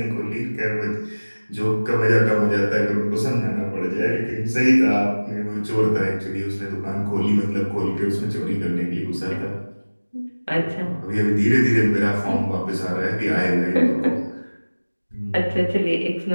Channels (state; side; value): inverted; both; correlation -1.00